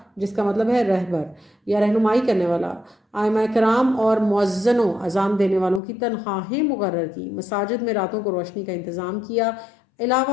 جس کا مطلب ہے رہبر یا رہنمائی کرنے والا، آئمہ کرام اور مؤذنوں اذان دینے والوں کی تنخواہیں مقرر کی، مساجد میں راتوں کو روشنی کا انتظام کیا،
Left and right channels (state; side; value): drops out; right; at 5.8 s